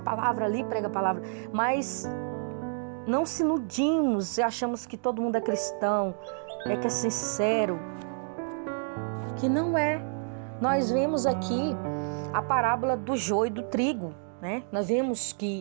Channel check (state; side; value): silent; left; 59 dB below the other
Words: ali prega a palavra, mas não se iludimos e achamos que todo mundo é cristão, que é sincero, que não é. Nós vemos aqui a parábola do joio e do trigo, né? Nós vemos